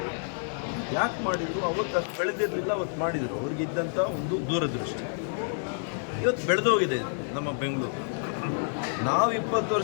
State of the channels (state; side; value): silent; right; digital silence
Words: ಯಾಕೆ ಮಾಡಿದರು? ಅವತ್ತು ಅಷ್ಟು ಬೆಳೆದಿರಲಿಲ್ಲ, ಅವತ್ತು ಮಾಡಿದರು. ಅವ್ರಿಗಿದ್ದಂಥ ಒಂದು ದೂರದೃಷ್ಟಿ. ಇವತ್ತು ಬೆಳೆದೋಗಿದೆ ನಮ್ಮ ಬೆಂಗಳೂರು. ನಾವು 20